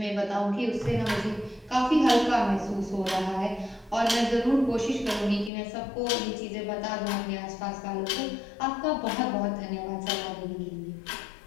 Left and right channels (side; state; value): right; drops out; at 5.5 s